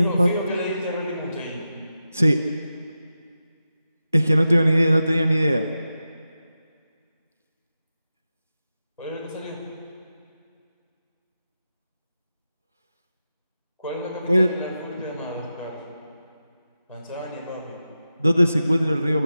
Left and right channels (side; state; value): both; inverted; correlation -0.91